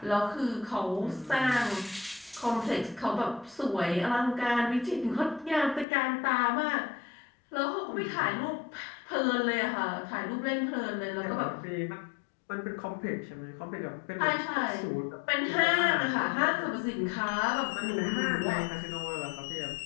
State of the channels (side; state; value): right; drops out; at 5.9 s